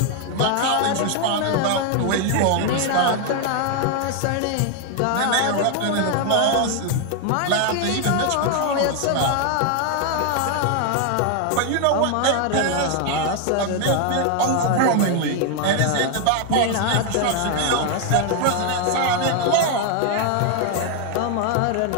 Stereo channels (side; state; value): both; different; correlation 0.00